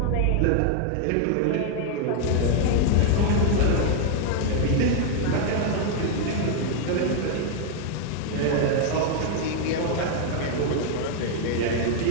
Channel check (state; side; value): different; both; correlation 0.00